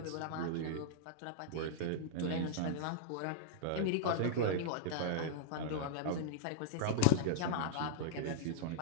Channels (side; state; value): both; different; correlation -0.02